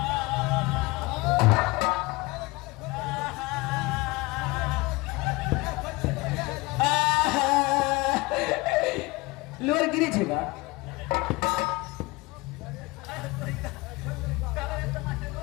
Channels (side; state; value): right; quieter; 23.0 dB